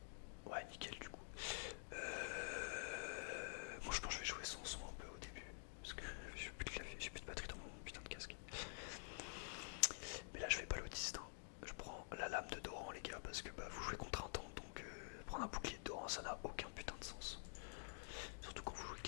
Ouais, nickel du coup. Moi je pense que je vais jouer sans son un peu au début. Parce que j'ai plus de clavier, j'ai plus de batterie dans mon putain de casque. Mais là je vais pas l'autiste. Hein. Je prends la lame de Doran les gars, parce que bah, vous jouez contre un tank, donc prendre un bouclier de Doran ça n'a aucun putain de sens. Surtout quand vous jouez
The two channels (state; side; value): silent; right; digital silence